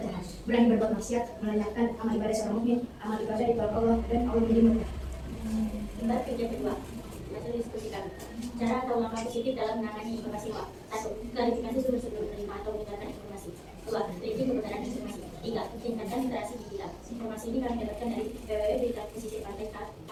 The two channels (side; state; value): both; identical; correlation 1.00